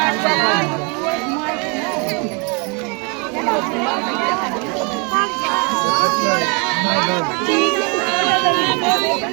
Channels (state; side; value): quieter; left; 33.1 dB